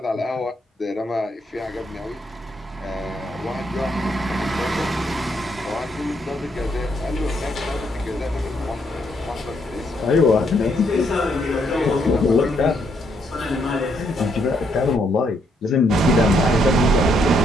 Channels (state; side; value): normal; both; correlation 0.74